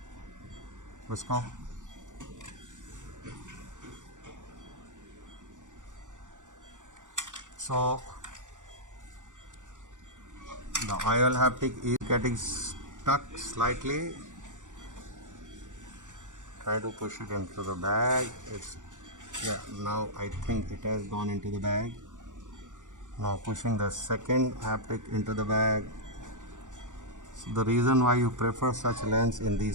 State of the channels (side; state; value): left; late; 0.86 ms